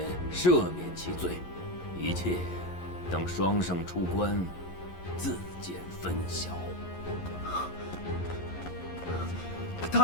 赦免其罪。一切等双圣出关，自见分晓。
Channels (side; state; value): right; late; 11 ms